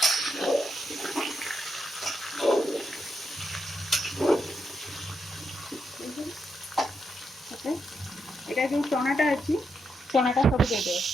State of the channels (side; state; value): both; normal; correlation 0.82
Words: एटा जो चनाटा अच्छी चनाटा सब दे दे